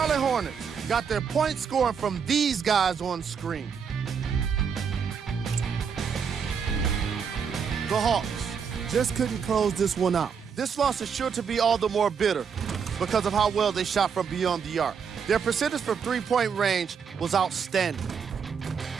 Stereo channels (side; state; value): left; quieter; 6.6 dB